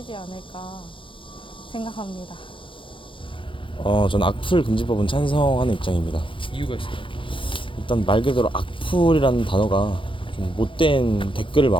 않을까 생각합니다. 저는 악플 금지법은 찬성하는 입장입니다. 이유가 있을까요? 일단 말 그대로 악플이라는 단어가 좀 못된 댓글을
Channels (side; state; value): right; late; 0.25 ms